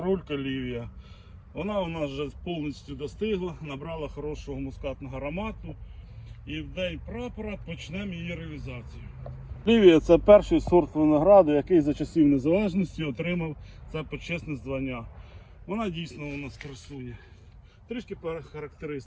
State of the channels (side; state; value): both; identical; correlation 1.00